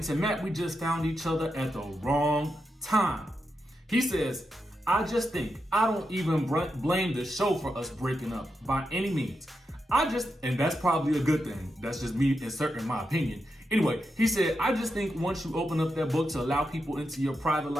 to Matt, we just found each other at the wrong time. He says, I just think I don't even blame the show for us breaking up by any means. And that's probably a good thing. That's just me inserting my opinion. Anyway, he said, I just think once you open up that book to allow people into your private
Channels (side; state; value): both; normal; correlation 0.86